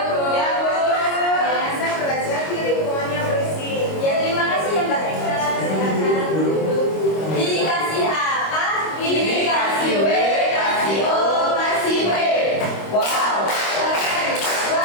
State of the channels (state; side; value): late; right; 25 ms